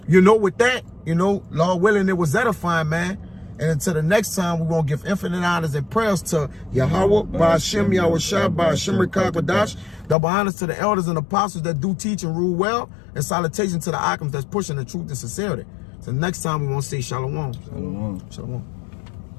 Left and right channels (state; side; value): drops out; right; at 10.2 s